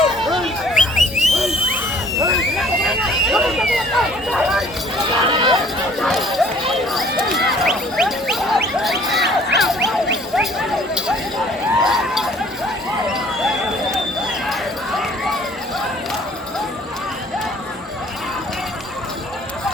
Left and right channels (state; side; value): normal; both; correlation 0.55